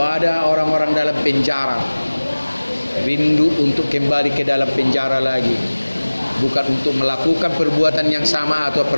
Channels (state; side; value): inverted; both; correlation -1.00